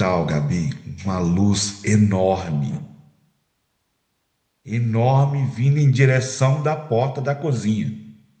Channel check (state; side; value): identical; both; correlation 1.00